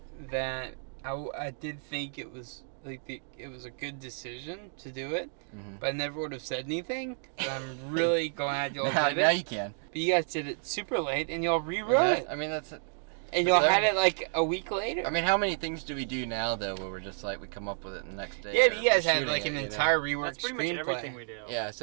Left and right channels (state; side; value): silent; left; 57 dB below the other